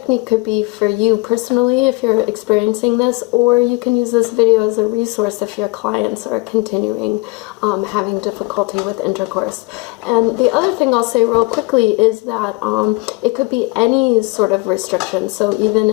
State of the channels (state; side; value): quieter; right; 25.3 dB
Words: could be for you personally if you're experiencing this, or you can use this video as a resource if your clients are continuing having difficulty with intercourse. And the other thing I'll say real quickly is that it could be any sort of restriction, so even